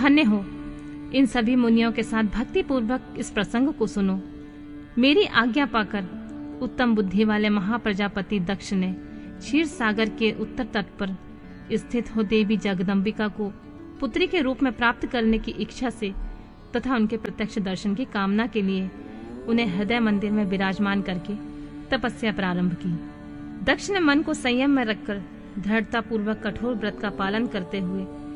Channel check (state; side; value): identical; both; correlation 1.00